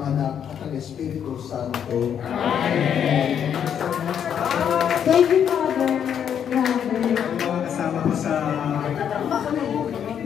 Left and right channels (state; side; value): quieter; right; 8.6 dB